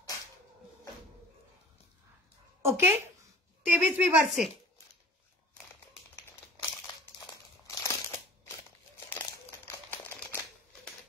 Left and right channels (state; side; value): normal; both; correlation 0.42